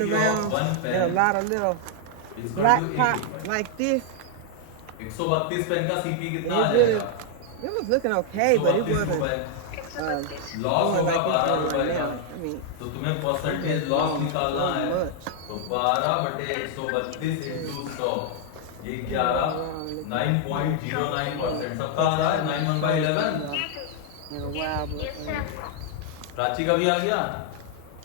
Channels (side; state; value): both; different; correlation 0.00